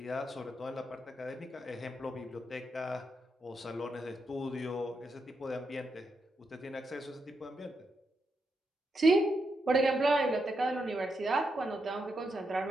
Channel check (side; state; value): both; normal; correlation 0.83